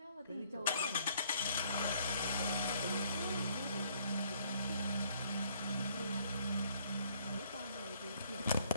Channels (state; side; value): inverted; both; correlation -0.66